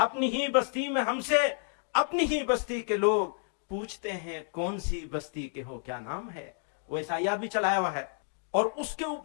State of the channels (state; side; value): silent; right; 58 dB below the other